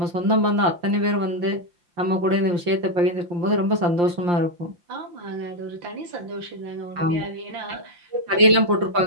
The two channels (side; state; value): left; late; 5.7 ms